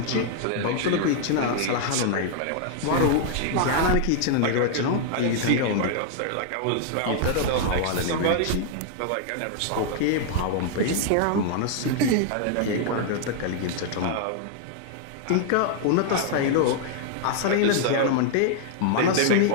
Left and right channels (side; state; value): both; different; correlation 0.00